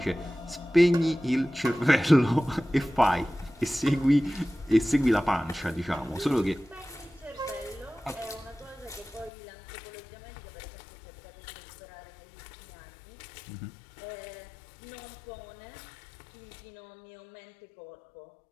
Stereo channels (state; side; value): drops out; right; at 9.3 s